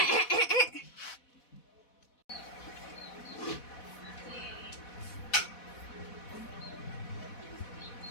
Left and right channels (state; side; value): late; right; 4.1 ms